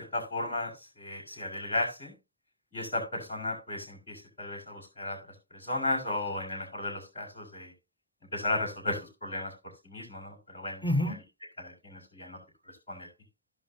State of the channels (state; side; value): inverted; both; correlation -0.44